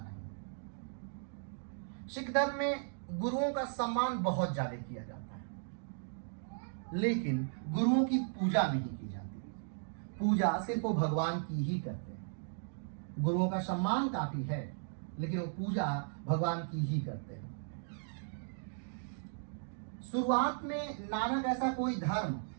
सिख धर्म में गुरुओं का सम्मान बहुत ज्यादा किया जाता है, लेकिन गुरुओं की पूजा नहीं की जाती। पूजा सिर्फ वो भगवान की ही करते हैं। गुरुओं का सम्मान काफी है लेकिन वो पूजा भगवान की ही करते हैं। शुरुआत में नानक ऐसा कोई धर्म,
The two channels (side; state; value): left; silent; digital silence